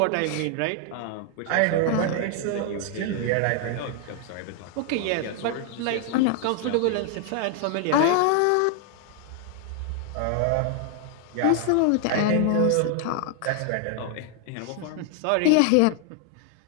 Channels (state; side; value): different; both; correlation 0.00